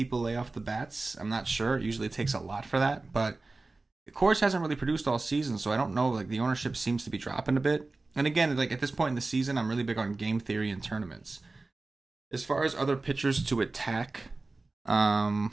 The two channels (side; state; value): left; quieter; 3.4 dB